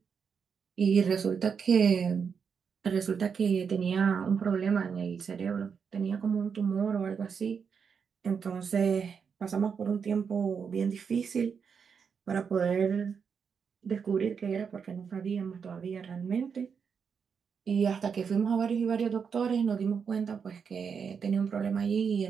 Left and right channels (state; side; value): quieter; left; 6.4 dB